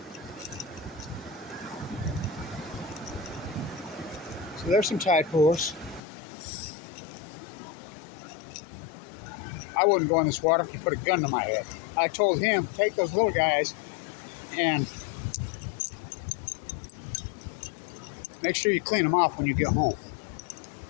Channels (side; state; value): right; drops out; at 6.0 s